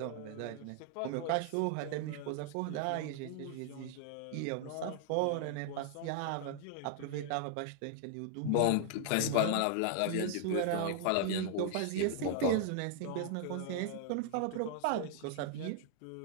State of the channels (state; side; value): different; both; correlation 0.00